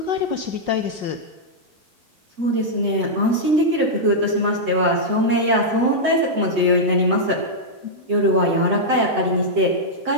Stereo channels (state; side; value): late; left; 7.9 ms